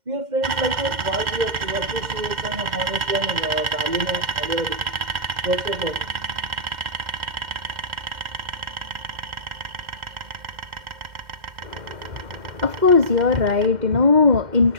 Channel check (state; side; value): late; left; 2.1 ms